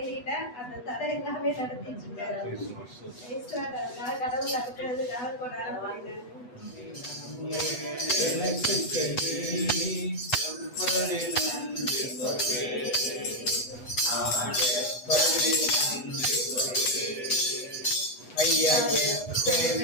அந்த தடை எல்லாமே நடத்திட்டு இருக்காரு. கடவுள் நடத்துறதுக்காக கொண்டாட போயிட்டாரு. ஐயா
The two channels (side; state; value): right; late; 8.1 ms